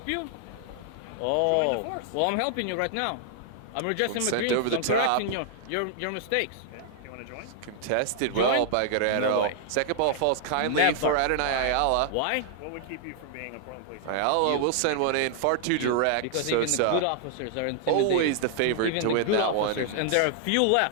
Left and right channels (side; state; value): both; different; correlation 0.00